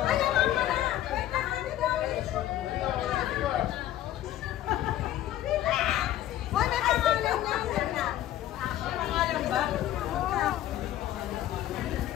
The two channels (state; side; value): quieter; right; 13.0 dB